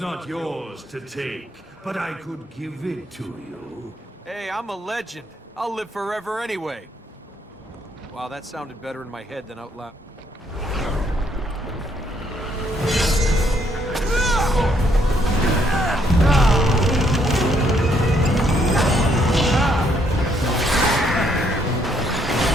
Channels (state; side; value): normal; both; correlation 0.71